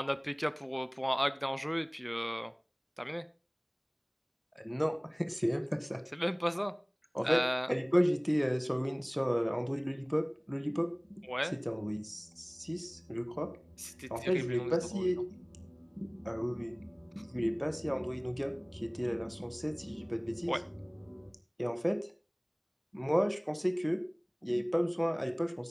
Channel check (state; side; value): identical; both; correlation 1.00